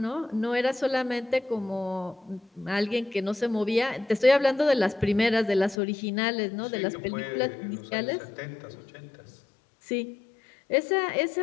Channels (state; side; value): drops out; right; at 5.8 s